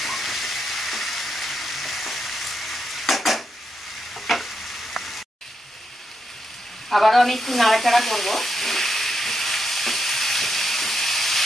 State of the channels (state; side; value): normal; both; correlation 0.82